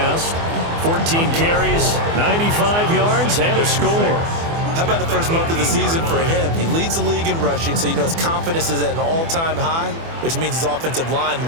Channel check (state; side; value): late; left; 24 ms